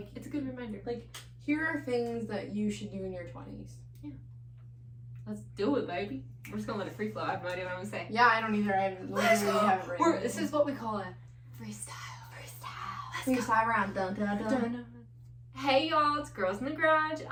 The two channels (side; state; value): both; identical; correlation 1.00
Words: it's a good reminder. Like, here are things that you should do in your 20s. Yeah. Let's do it, baby. We're just gonna let it free flow. I have no idea what I'm gonna say. Yeah, I don't either. I literally have written. This is what we call a freestyle. Freestyle round. Dun, dun, dun. Dun, dun. Hey y'all, it's Girls in the Garage.